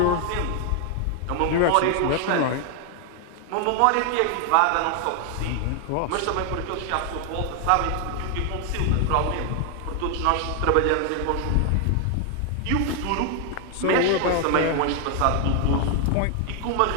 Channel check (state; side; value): different; both; correlation 0.00